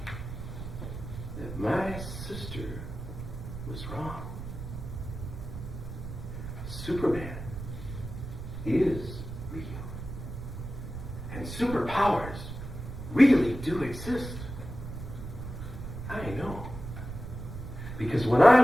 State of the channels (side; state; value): right; noise; rumble, 9 dB below the sound